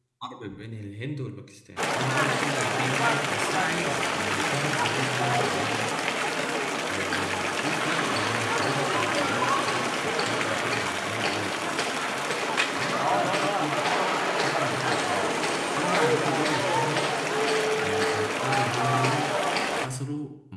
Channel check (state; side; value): identical; both; correlation 1.00